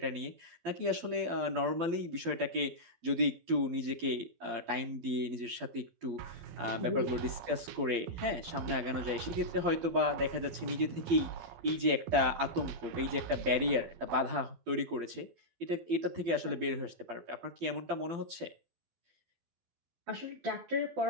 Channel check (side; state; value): left; late; 12 ms